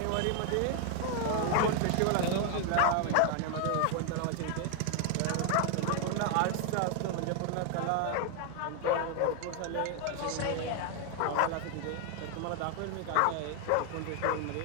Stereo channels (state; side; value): different; both; correlation 0.00